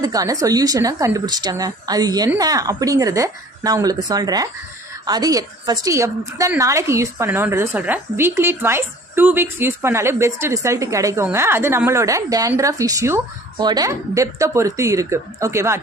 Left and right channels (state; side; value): normal; both; correlation 0.49